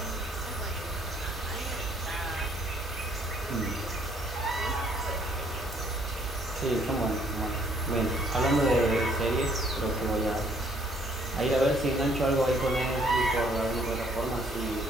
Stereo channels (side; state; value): both; normal; correlation 0.64